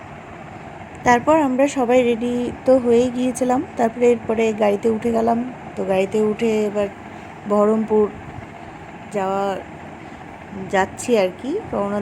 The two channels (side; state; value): both; identical; correlation 1.00